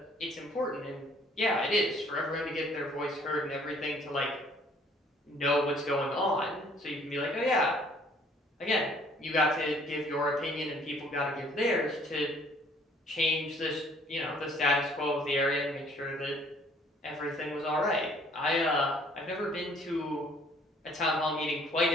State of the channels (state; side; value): normal; both; correlation 0.59